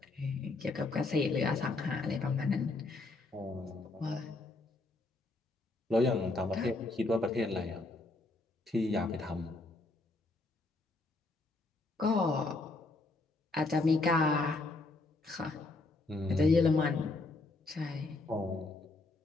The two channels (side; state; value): right; quieter; 3.2 dB